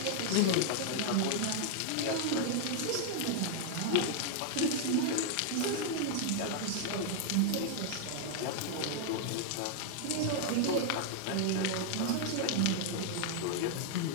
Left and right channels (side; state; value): both; different; correlation -0.01